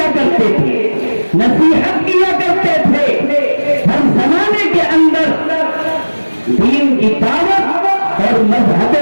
کرتے تھے، نصیحت کیا کرتے تھے، ہر زمانے کے اندر دین کی دعوت اور مذہب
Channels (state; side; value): inverted; both; correlation -1.00